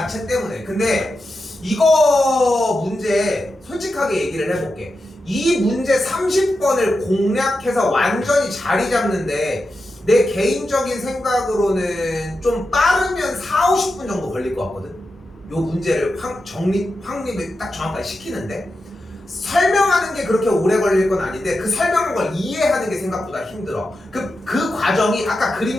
때문에. 근데 이거 문제 솔직하게 얘기를 해볼게. 이 문제 30번을 공략해서 완전히 자리 잡는데 내 개인적인 생각으로는 좀 빠르면 4, 50분 정도 걸릴 것 같거든. 요 문제를 확립을 딱 정확하게 시키는데 설명하는 게 그렇게 오래 걸릴 건 아닌데 그 설명한 걸 이해하는 게 생각보다 힘들어. 그 과정이 아까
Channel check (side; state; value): both; normal; correlation 0.89